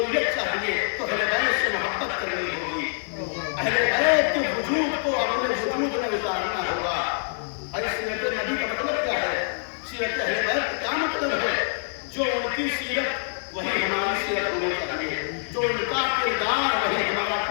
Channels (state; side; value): silent; right; digital silence